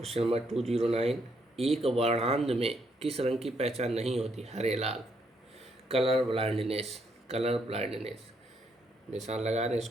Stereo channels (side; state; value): both; normal; correlation 0.74